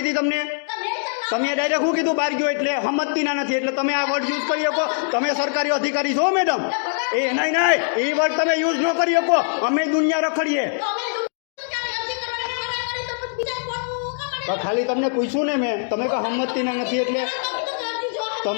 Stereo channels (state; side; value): silent; right; digital silence